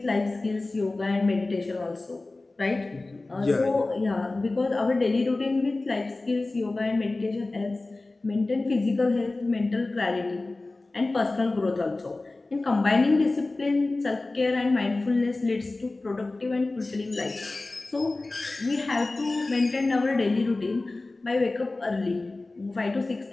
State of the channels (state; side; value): quieter; right; 3.1 dB